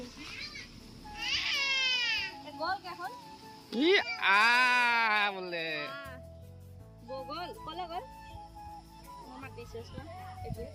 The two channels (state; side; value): identical; both; correlation 1.00